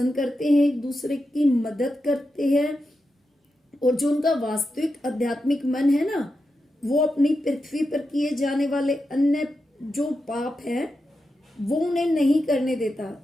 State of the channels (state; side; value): normal; both; correlation 0.88